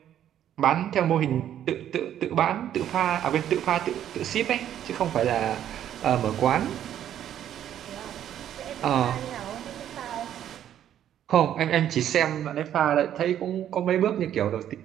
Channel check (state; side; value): quieter; left; 10.7 dB